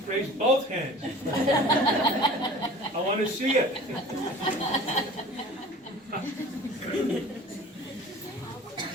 raise both hands. I want to see it.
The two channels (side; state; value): both; normal; correlation 0.43